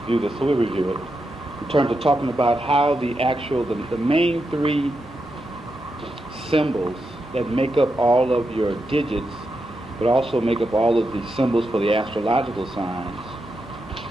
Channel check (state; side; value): normal; both; correlation 0.86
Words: this, so we'll review it. In terms of talking about how the main 3 symbols that make up all of your digits, but also make up all of the symbols for the astrological signs